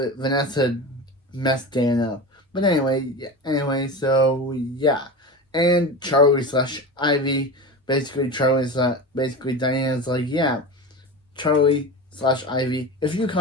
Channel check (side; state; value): both; normal; correlation 0.27